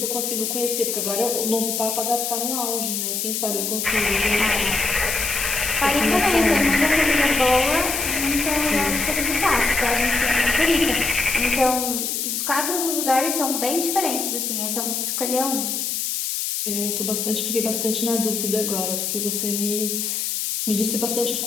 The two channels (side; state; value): left; noise; hiss, 1 dB below the sound